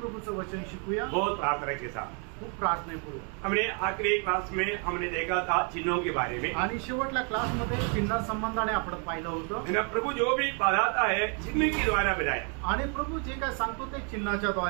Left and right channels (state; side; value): quieter; left; 38.6 dB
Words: वचन शिकूया बहुत प्रार्थना के साथ। खूप प्रार्थनेपूर्वक। हमने आखिरी क्लास में हमने देखा था चिन्हों के बारे में आणि शेवटल्या क्लास मध्ये चिन्ह संबंधाने आपण पाहिलं होतं। प्रभु जो भी बताता है चिन्ह के द्वारा बताया आणि प्रभु जे काय सांगतो ते चिन्हाच्या